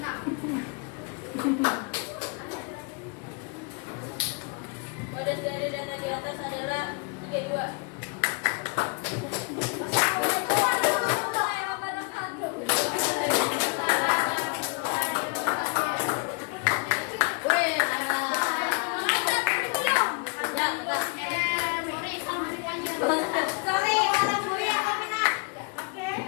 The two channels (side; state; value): right; quieter; 32.4 dB